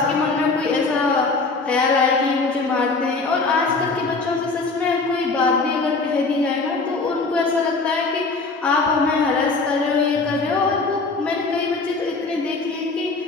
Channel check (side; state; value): right; quieter; 3.9 dB